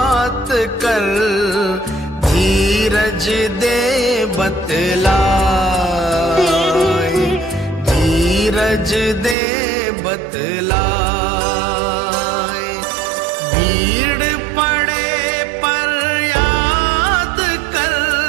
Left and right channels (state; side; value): drops out; left; at 9.3 s